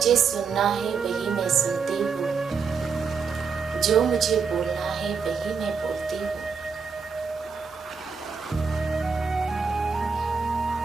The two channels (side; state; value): left; quieter; 5.6 dB